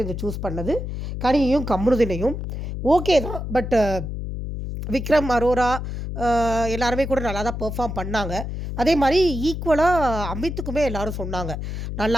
சூஸ் பண்ணது கனியையும் கம்ருதினையும். ஓகே தான். பட் விக்ரம், அரோரா எல்லாருமே கூட நல்லா தான் பெர்ஃபார்ம் பண்ணாங்க. அதே மாதிரி ஈக்குவலாக அமித்துக்குமே எல்லாரும் சொன்னாங்க,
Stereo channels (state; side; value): noise; left; hum, 5 dB below the sound